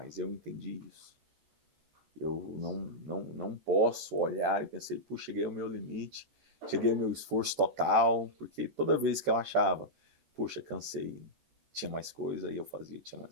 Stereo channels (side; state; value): left; late; 13 ms